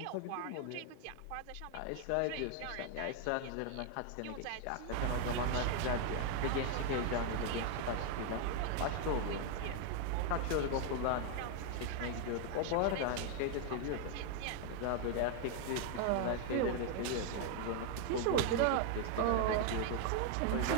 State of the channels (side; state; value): both; different; correlation 0.00